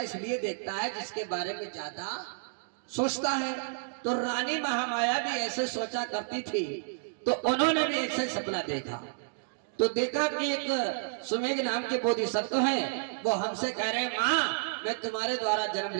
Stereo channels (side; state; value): left; silent; digital silence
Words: इसलिए देखता है जिसके बारे में ज्यादा सोचता है। तो रानी महामाया भी ऐसे सोचा करती थी, तो उन्होंने भी ऐसे सपना देखा। तो देखा कि एक सुमेघ नाम के बोधिसत्व हैं, वो हमसे कह रहे हैं माँ मैं तुम्हारे द्वारा जन्म